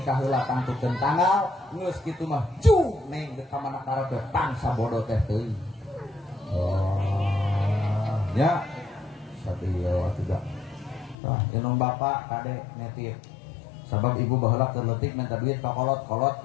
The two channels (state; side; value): drops out; right; at 11.2 s